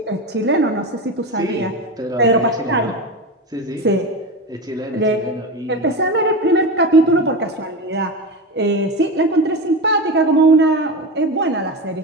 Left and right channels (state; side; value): normal; both; correlation 0.22